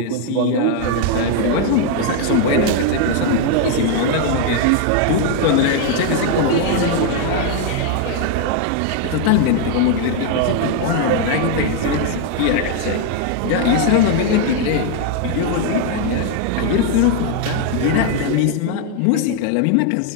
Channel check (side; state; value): both; different; correlation 0.00